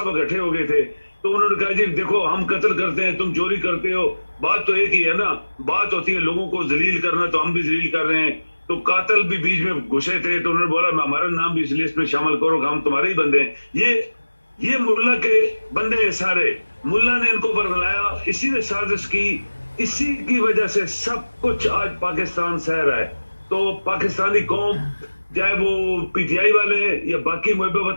اکٹھے ہو گئے تھے، تو انہوں نے کہا جی دیکھو ہم قتل کرتے ہیں، تم چوری کرتے ہو، بات تو ایک ہی ہے نا، بات ہوتی ہے لوگوں کو ذلیل کرنا، تو ہم بھی ذلیل کر رہے ہیں۔ تو قاتل بھی بیچ میں گھسے تھے، تو انہوں نے بولا ہمارا نام بھی اس لسٹ میں شامل کرو کہ ہم تمہارے ہی بندے ہیں۔ یہ ملا کے بندے ہیں سارے، ملا نے ان کو برگلایا، اسی نے سازش کی، اسی کی وجہ سے سب کچھ آج پاکستان سہ رہا ہے۔ تو پاکستانی قوم، چاہے وہ پی ٹی آئی والے ہیں یا باقی محب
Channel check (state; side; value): inverted; both; correlation -1.00